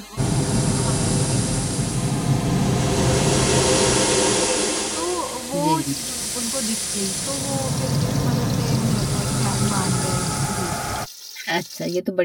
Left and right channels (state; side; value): identical; both; correlation 1.00